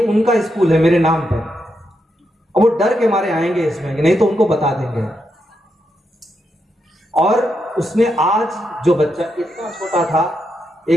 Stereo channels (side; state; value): both; normal; correlation 0.83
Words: उनका स्कूल है मेरे नाम पर, और वो डर के मारे आएंगे इसमें कि नहीं तो उनको बता देंगे। और उसने आज जो बच्चा इतना छोटा था,